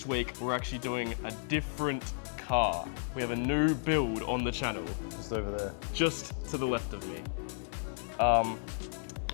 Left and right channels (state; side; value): silent; right; 56 dB below the other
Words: week, we're actually doing a different car. We have a new build on the channel. Just over there. Just to the left of me.